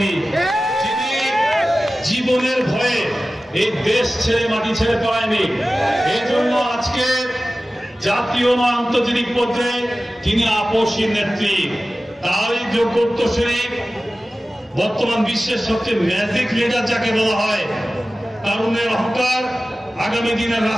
যিনি জীবনের ভয়ে এই দেশ ছেড়ে মাটি ছেড়ে পায়নি। এই জন্য আজকে জাতীয় ও আন্তর্জাতিক পর্যায়ে তিনি আপসী নেত্রী। তারই যোগ্য উত্তরসূরি বর্তমান বিশ্বের সবচেয়ে ম্যাজিক লিডার যাকে বলা হয়, তারুণ্যের অহংকার, আগামী দিনের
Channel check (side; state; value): both; normal; correlation 0.96